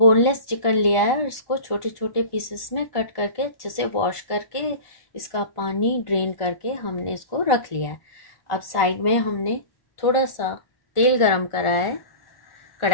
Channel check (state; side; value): late; right; 1.4 ms